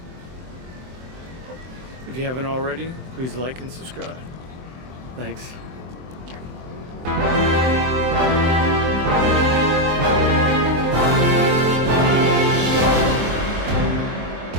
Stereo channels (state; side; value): late; left; 23 ms